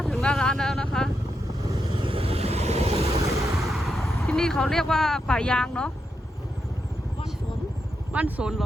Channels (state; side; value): normal; both; correlation 0.84